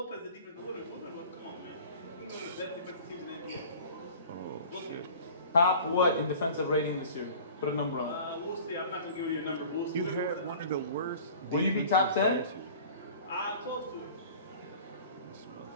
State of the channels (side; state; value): both; inverted; correlation -0.44